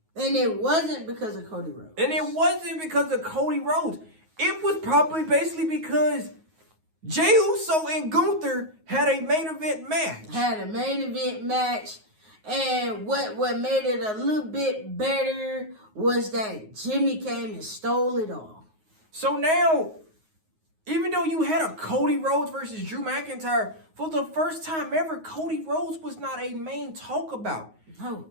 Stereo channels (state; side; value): late; left; 9.4 ms